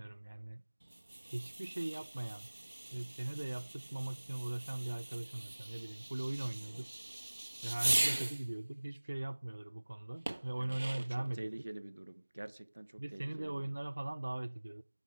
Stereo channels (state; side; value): inverted; both; correlation -1.00